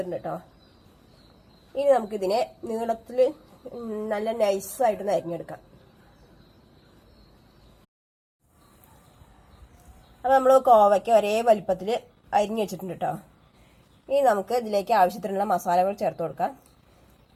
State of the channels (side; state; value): both; identical; correlation 1.00